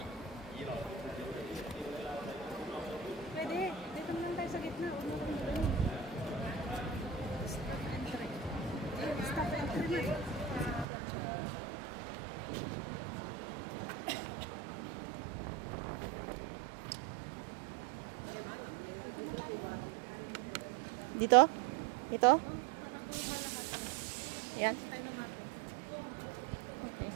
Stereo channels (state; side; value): drops out; left; at 10.9 s